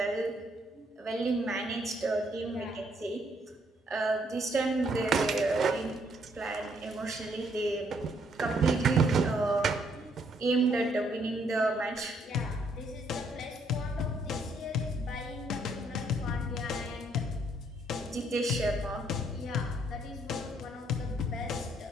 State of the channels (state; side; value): normal; both; correlation 0.69